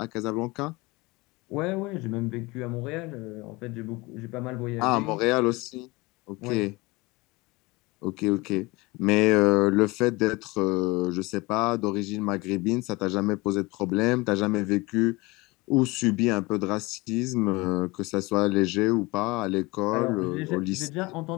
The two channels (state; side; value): quieter; right; 23.4 dB